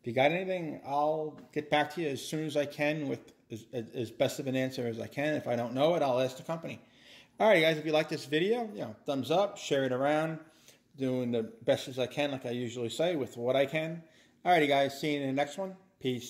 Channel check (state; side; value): identical; both; correlation 1.00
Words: if you got anything, I'll get back to you as soon as I can with as best of an answer as I can. If I don't know it, I'll ask the company. Alright, guys, if you like this video, you know, thumbs up, share it around. Doing the best as I can, like I usually say, with what I can. Alrighty, guys, see you in the next one.